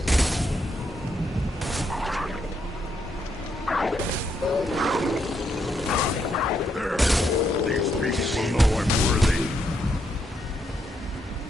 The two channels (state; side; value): normal; both; correlation 0.77